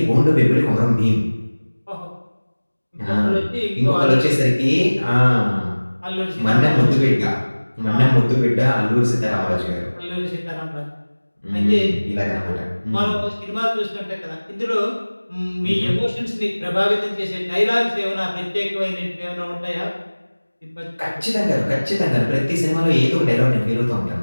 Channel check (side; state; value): both; inverted; correlation -1.00